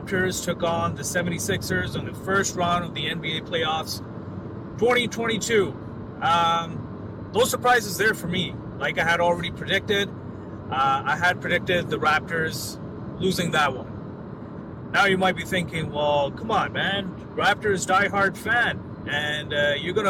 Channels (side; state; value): both; identical; correlation 1.00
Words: took on the 76ers on the first round of the NBA playoffs 2022. No surprises there for me. Like I had already predicted, I had predicted the Raptors losing that one. Now you might be thinking, well, come on, man. Raptors diehard fan. And you're going